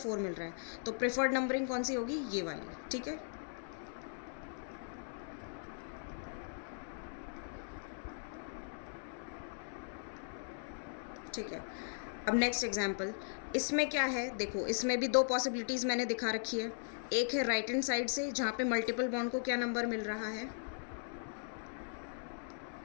मिल रहा है, तो प्रेफर्ड नंबरिंग कौन सी होगी? ये वाली। ठीक है, ठीक है। अब नेक्स्ट एग्जाम्पल, इसमें क्या है? देखो, इसमें भी दो पॉसिबिलिटीज़ मैंने दिखा रखी है। एक है राइट हैंड साइड से, जहाँ पे मल्टीपल बॉन्ड को क्या नंबर मिल रहा है?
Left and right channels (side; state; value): right; silent; digital silence